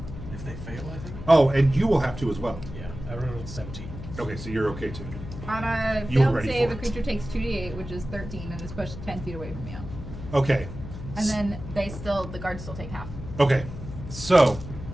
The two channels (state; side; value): noise; left; hum, 10 dB below the sound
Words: they fail, I think. Oh, and you will have to as well. Yeah, I rolled 17. Okay, so you're okay too. On a You were failed ready save, for a it. creature takes 2d8, which is 13, and is pushed 10 feet away from you. Okay. And then the guards still take half. Okay, so